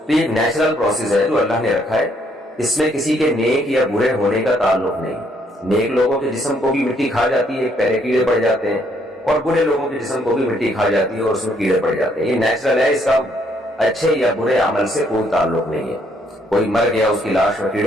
تو یہ نیچرل پروسیس ہے جو اللہ نے رکھا ہے۔ اس میں کسی کے نیک یا برے ہونے کا تعلق نہیں۔ نیک لوگوں کے جسم کو بھی مٹی کھا جاتی ہے، پہلے کیڑے پڑ جاتے ہیں، اور برے لوگوں کے جسم کو بھی مٹی کھا جاتی ہے اور اس میں کیڑے پڑ جاتے ہیں۔ یہ نیچرل ہے، اس کا اچھے یا برے عمل سے کوئی تعلق نہیں ہے۔ کوئی مر گیا، اس کی لاش میں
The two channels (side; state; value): both; normal; correlation 0.69